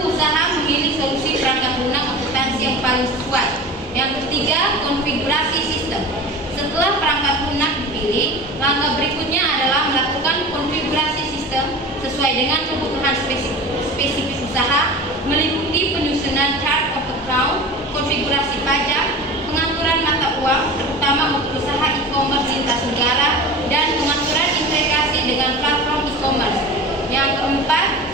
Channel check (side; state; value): both; normal; correlation 0.34